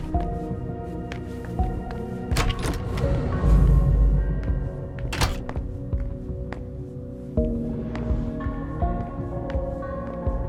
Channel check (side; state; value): both; identical; correlation 1.00